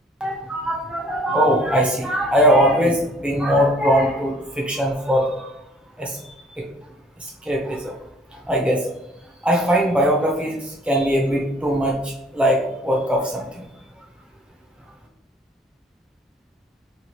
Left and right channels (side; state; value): both; normal; correlation 0.54